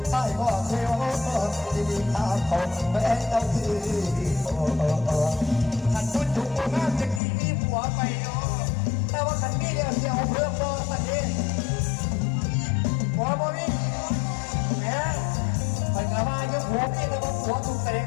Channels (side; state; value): right; drops out; at 7.2 s